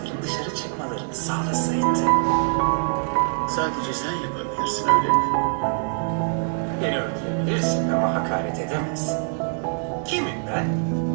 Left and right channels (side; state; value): left; silent; 56 dB below the other